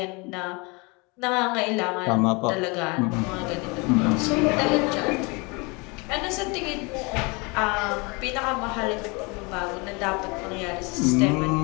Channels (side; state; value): right; quieter; 28.6 dB